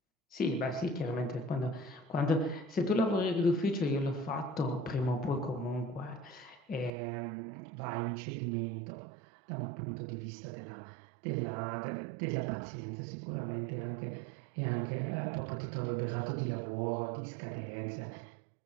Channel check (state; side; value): drops out; left; at 6.9 s